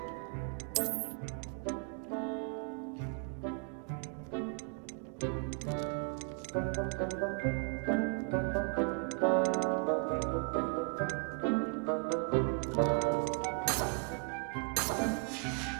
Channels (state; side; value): quieter; left; 35.7 dB